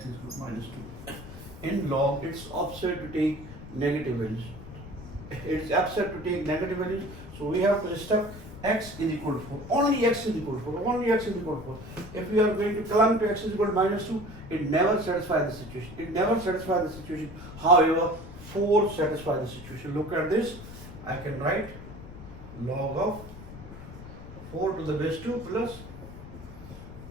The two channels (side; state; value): left; noise; rumble, 14 dB below the sound